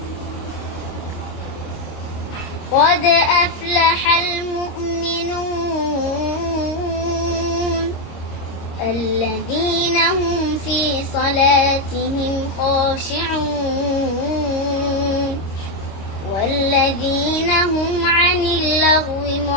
قد أفلح المؤمنون الذين هم في صلاتهم خاشعون والذين هم عن اللغو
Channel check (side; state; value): right; late; 26 ms